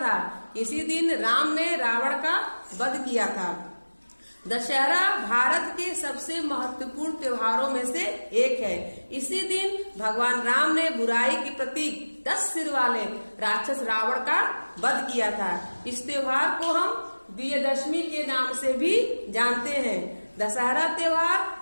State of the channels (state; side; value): inverted; both; correlation -1.00